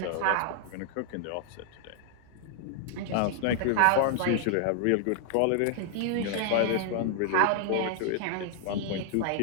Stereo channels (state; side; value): different; both; correlation 0.00